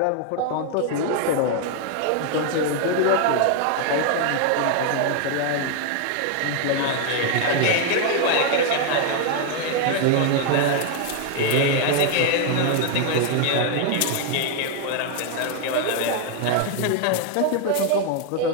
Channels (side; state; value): both; different; correlation 0.00